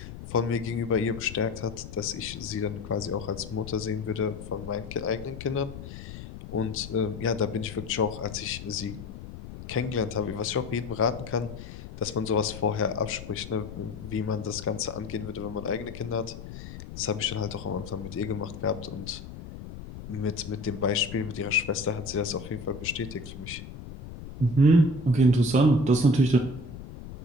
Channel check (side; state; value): left; noise; rumble, 12 dB below the sound